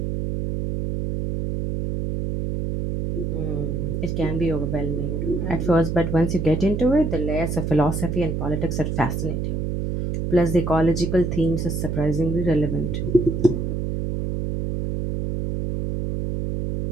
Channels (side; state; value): right; noise; hum, 2 dB below the sound